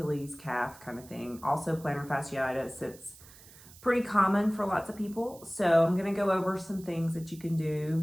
calf kind of thing. Also plantar fasciitis, it's pretty common for lots of people. So I'm going to go over some things that you can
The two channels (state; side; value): noise; right; hiss, 21 dB below the sound